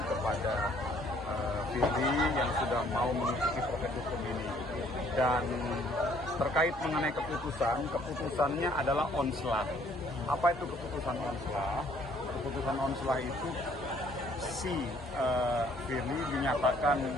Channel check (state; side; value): normal; both; correlation 0.62